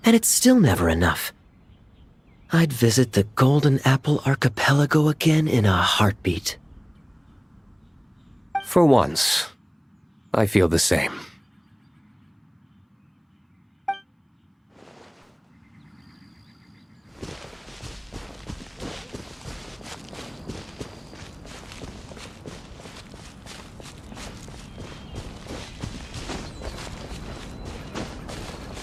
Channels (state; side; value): identical; both; correlation 1.00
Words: and it's still never enough. I'd visit the Golden Apple Archipelago again in a heartbeat. For once, I feel the same.